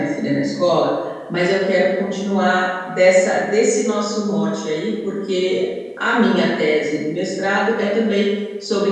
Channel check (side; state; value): both; identical; correlation 1.00